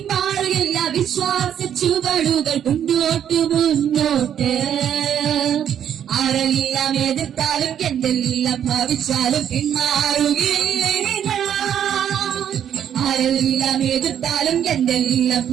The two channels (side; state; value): left; quieter; 9.4 dB